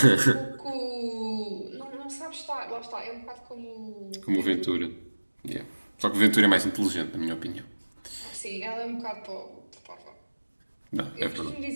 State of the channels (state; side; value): inverted; both; correlation -1.00